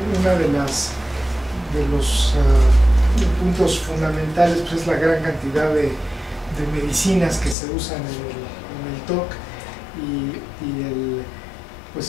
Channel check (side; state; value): right; drops out; at 7.6 s